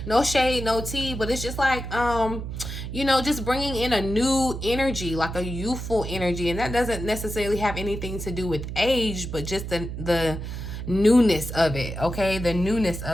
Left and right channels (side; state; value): right; noise; hum, 7 dB below the sound